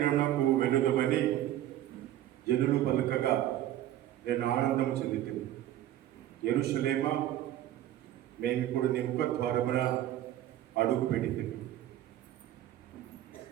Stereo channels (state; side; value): quieter; left; 12.9 dB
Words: వెళ్ళుదామని జనులు పలకగా నేను ఆనందం చెందుతుంది. యెరూషలేమా, మేము ఇప్పుడు నీ ముఖ ద్వారమున అడుగు పెడితిమి.